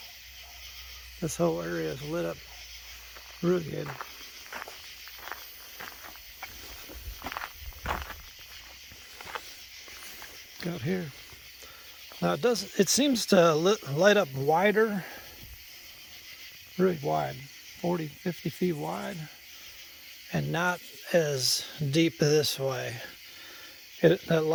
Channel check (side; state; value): both; identical; correlation 1.00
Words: This whole area is lit up really good. Out here. Now it seems to light up wider, really wide, 40, 50 feet wide, and not as deep this way. That